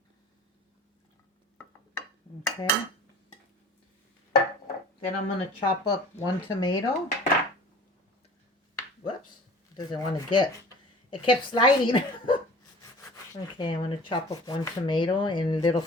Okay. Then I'm going to chop up 1 tomato. Whoops. Doesn't want to get. It kept sliding. Okay, I'm going to chop up 1 tomato in little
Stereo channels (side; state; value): both; normal; correlation 0.43